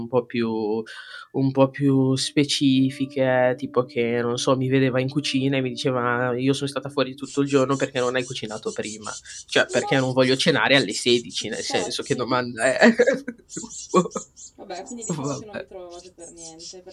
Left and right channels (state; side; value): identical; both; correlation 1.00